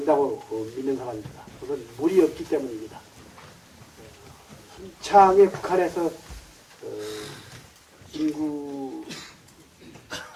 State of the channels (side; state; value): both; identical; correlation 1.00